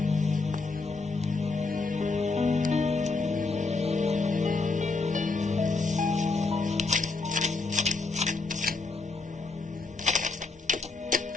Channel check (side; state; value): right; quieter; 3.7 dB